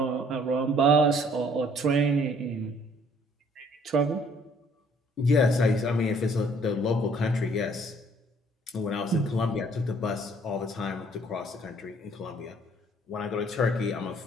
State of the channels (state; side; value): normal; both; correlation 0.60